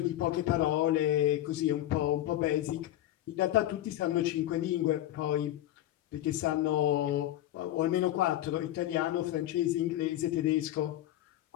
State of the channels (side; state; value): right; quieter; 13.5 dB